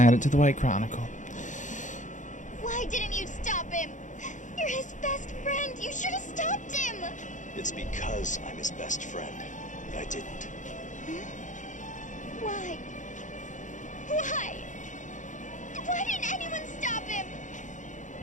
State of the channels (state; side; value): late; right; 0.36 ms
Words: to the White Chronicle. Why didn't you stop him? You're his best friend. You should have stopped him. It's because I'm his best friend that I didn't. Why? Why? Why didn't anyone stop him?